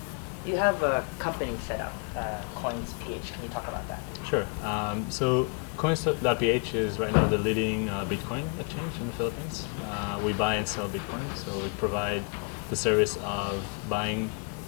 You have a company set up, Coins.ph. Can you talk about that? Sure. So Coins.ph is right now the leading Bitcoin exchange in the Philippines. We buy and sell Bitcoin, so we provide the service of buying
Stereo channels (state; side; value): quieter; right; 38.5 dB